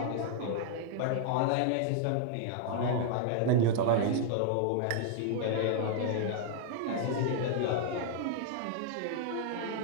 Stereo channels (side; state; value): both; different; correlation -0.01